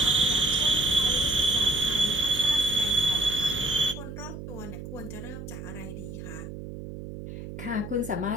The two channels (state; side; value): noise; right; hum, 10 dB below the sound